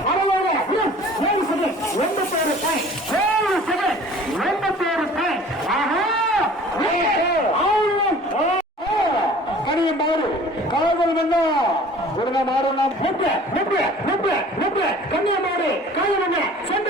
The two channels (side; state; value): both; normal; correlation 0.47